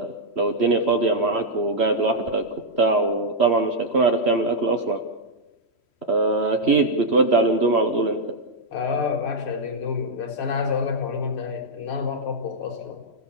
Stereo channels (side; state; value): right; late; 3.1 ms